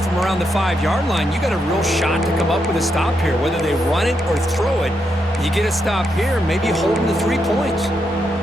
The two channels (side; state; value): both; normal; correlation 0.81